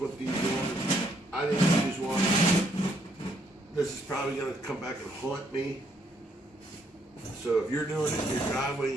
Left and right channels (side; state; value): both; normal; correlation 0.71